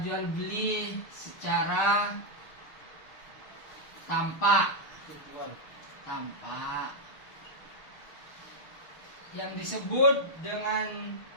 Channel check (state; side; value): late; right; 6.5 ms